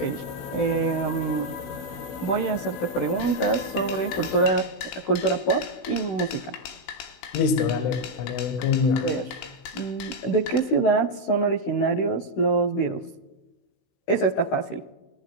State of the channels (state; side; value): late; right; 16 ms